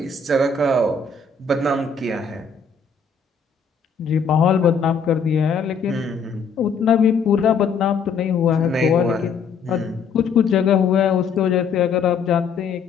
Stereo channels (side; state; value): right; quieter; 5.5 dB